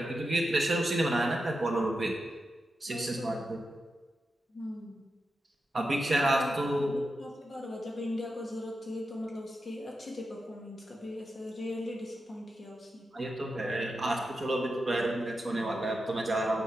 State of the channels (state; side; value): normal; both; correlation 0.89